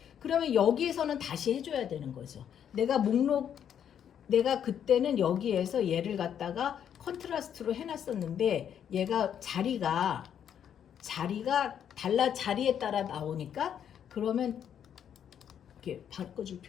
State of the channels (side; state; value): right; quieter; 9.0 dB